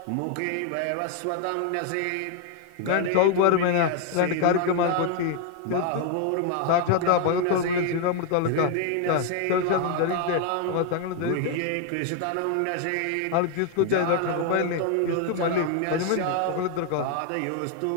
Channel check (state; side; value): different; both; correlation 0.00